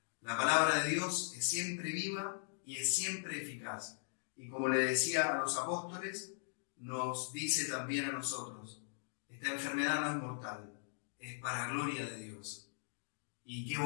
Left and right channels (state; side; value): silent; right; digital silence